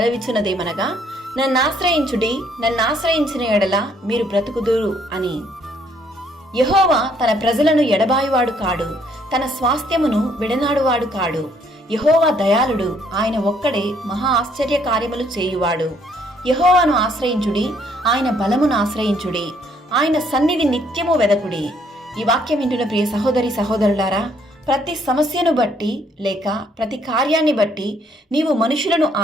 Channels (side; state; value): both; normal; correlation 0.66